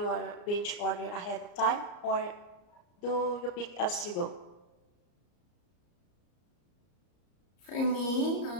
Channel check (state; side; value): late; right; 34 ms